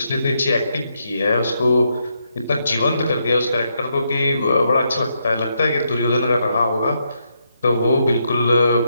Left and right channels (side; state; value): both; inverted; correlation -0.79